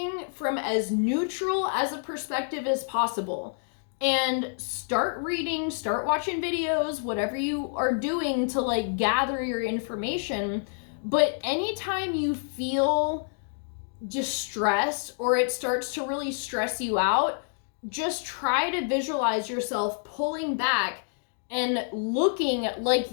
from as neutral as a perspective as possible. And start reading, start watching videos, whatever you are doing to like gather your information. But anytime you feel distressed or it starts to really stress you out, just try to visualize yourself pulling back and looking like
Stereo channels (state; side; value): silent; right; digital silence